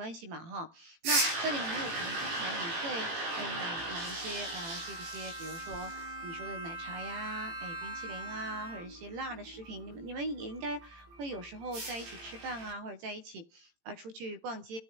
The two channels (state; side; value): late; left; 18 ms